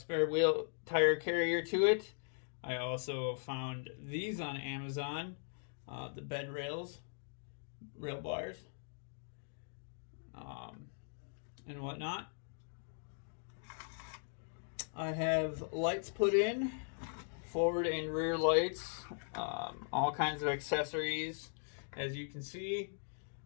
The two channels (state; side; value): silent; right; digital silence